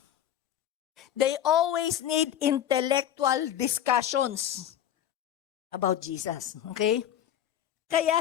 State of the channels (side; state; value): right; quieter; 10.5 dB